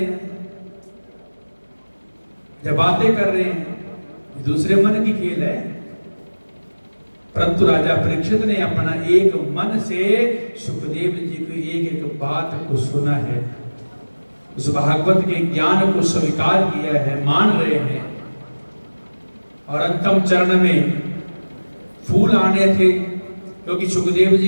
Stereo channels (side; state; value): both; inverted; correlation -1.00